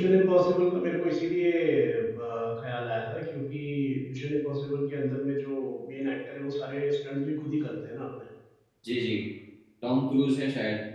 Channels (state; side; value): identical; both; correlation 1.00